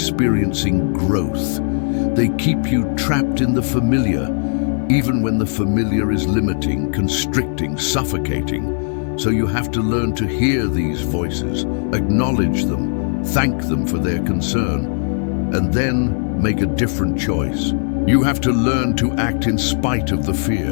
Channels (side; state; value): right; silent; 66 dB below the other